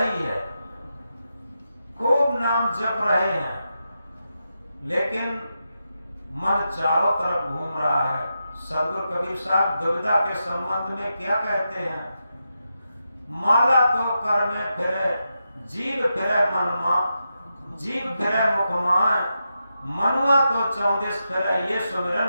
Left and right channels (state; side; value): inverted; both; correlation -0.87